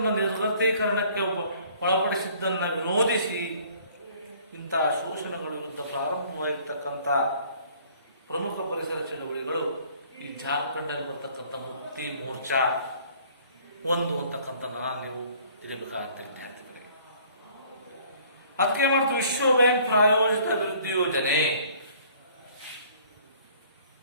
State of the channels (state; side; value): inverted; both; correlation -0.56